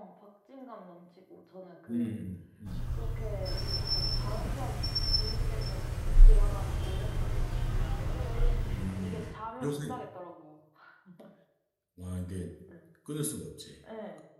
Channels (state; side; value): identical; both; correlation 1.00